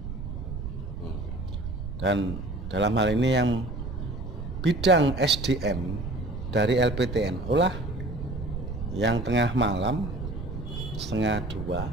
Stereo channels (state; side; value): noise; right; rumble, 7 dB below the sound